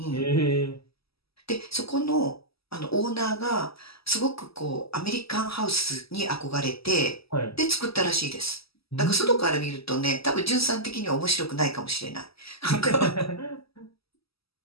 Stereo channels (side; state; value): right; late; 0.76 ms